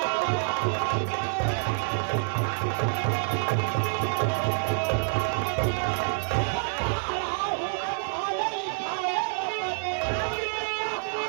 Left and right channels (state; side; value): silent; left; digital silence